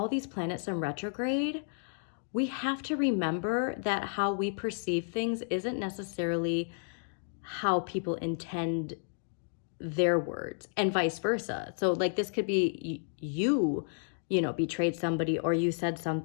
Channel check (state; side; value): silent; right; digital silence